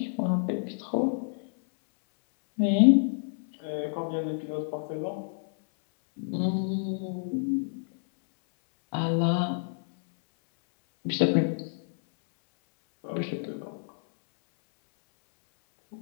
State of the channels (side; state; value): right; silent; 59 dB below the other